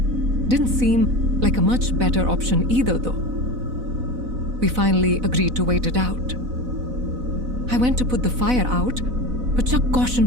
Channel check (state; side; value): late; left; 4.0 ms